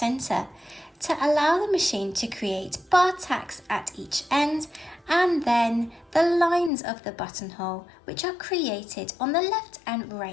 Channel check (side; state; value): right; drops out; at 6.7 s